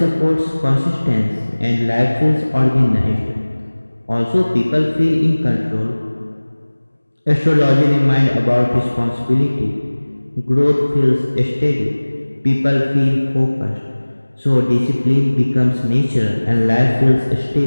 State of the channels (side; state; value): both; inverted; correlation -1.00